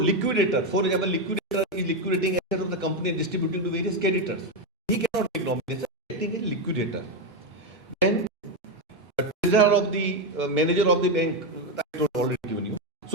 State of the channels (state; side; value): normal; both; correlation 0.09